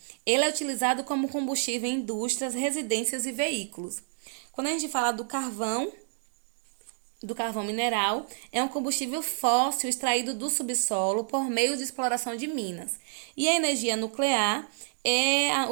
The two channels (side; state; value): left; silent; digital silence